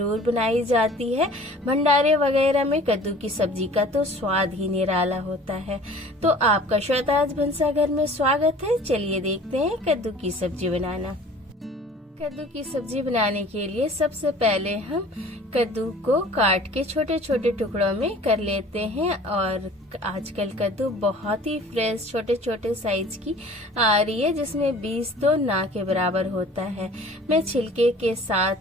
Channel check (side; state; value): both; normal; correlation 0.47